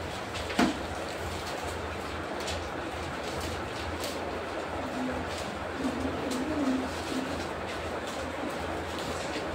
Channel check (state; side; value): identical; both; correlation 1.00